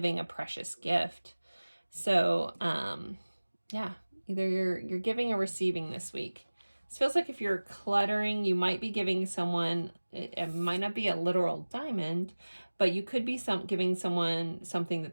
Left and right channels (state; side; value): inverted; both; correlation -1.00